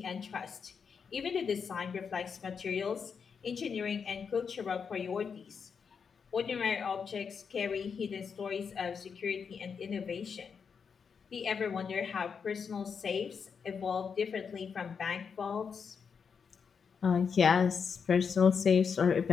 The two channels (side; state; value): right; quieter; 6.2 dB